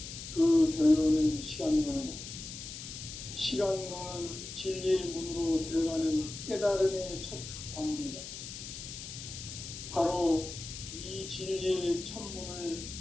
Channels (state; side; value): noise; left; hiss, 10 dB below the sound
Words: 그 결론은 시간론이다. 시간론은 진리의 문으로 들어가는 깨달음의 첫 방문이다. 바로 이 진리의 첫 문을